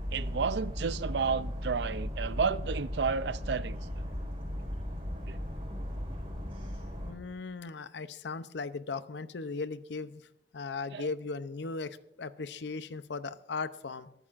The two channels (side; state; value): both; normal; correlation 0.06